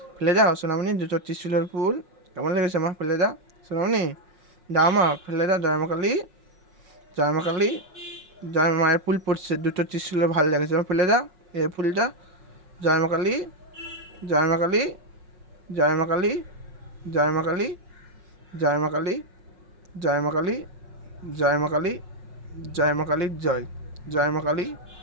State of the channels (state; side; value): late; left; 5.7 ms